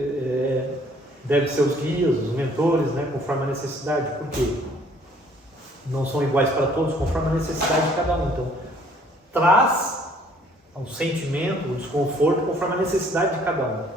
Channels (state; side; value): normal; both; correlation 0.60